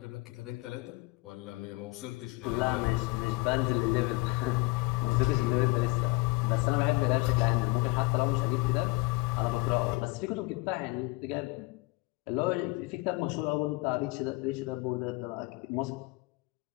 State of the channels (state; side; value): quieter; right; 24.0 dB